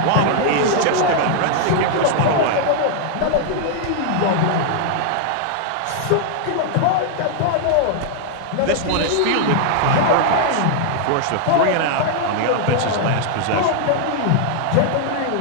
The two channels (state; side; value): different; both; correlation 0.00